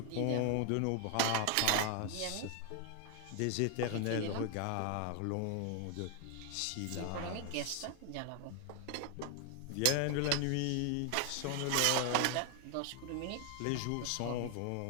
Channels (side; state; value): both; different; correlation 0.01